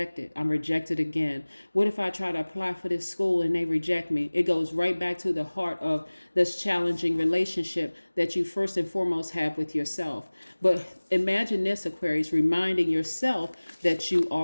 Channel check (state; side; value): inverted; both; correlation -1.00